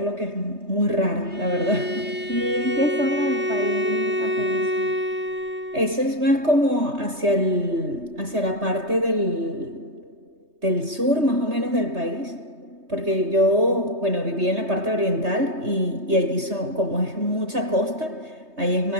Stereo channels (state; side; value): late; left; 3.2 ms